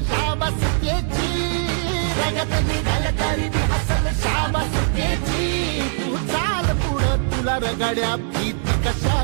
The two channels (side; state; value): left; silent; digital silence